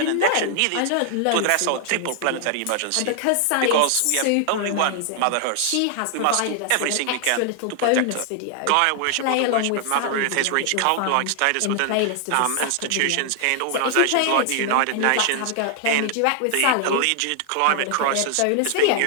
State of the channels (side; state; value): both; different; correlation 0.00